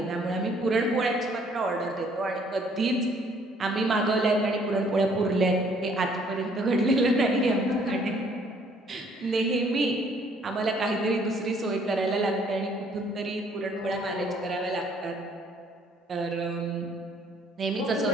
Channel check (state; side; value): normal; both; correlation 0.62